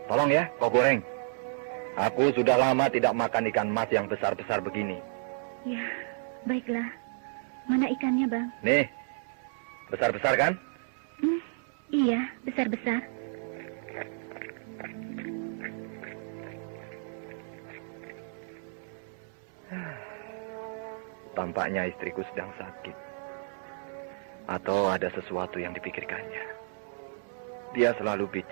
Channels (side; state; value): left; silent; 57 dB below the other